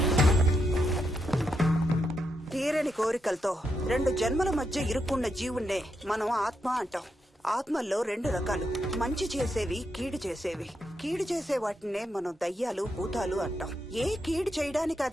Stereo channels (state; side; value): normal; both; correlation 0.83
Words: తీరని కోరికలతో 2 జన్మల మధ్య ఇరుక్కున్న జీవుణ్ణే మనం ఆత్మ అంటాం. ఆత్మల్లో 2 రకాలు, మంచి చేసేవి, కీడు చేసేవి. కీడు చేసే వాటినే మనం దయ్యాలు, భూతాలు అంటాం. ఏ కీడు చేయడానికి